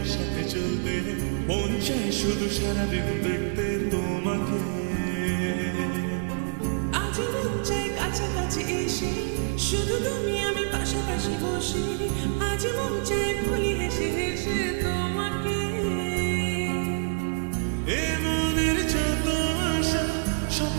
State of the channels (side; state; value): left; silent; 60 dB below the other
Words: চলতে, মন চায় শুধু সারাদিন দেখতে তোমাকে। আজ মন চায় কাছাকাছি এসে শুধু তুমি আমি পাশাপাশি বসে, আজ মন চায় বলি হেসে হেসে তোমাকে। এ মনের যত আশা,